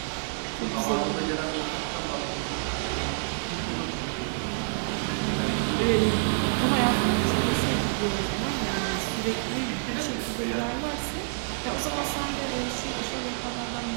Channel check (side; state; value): left; silent; digital silence